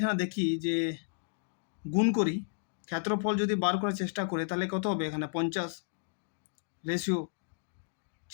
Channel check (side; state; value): right; silent; digital silence